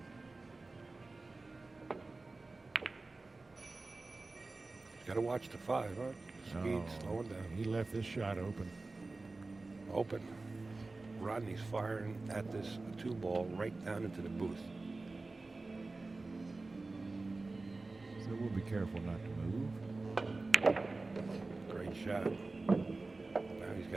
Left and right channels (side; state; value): left; quieter; 3.4 dB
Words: He's got to watch the 5, huh? Speed slowing down. He left this shot open. Open. Rodney's firing at this 2-ball right down into the booth. So we'll be careful not to move. Great shot. Now he's